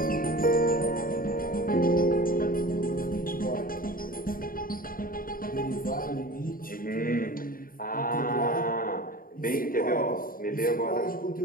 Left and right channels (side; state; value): right; late; 0.41 ms